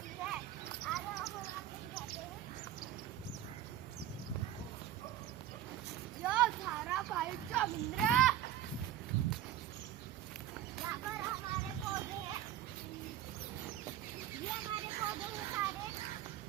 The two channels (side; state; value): left; quieter; 12.0 dB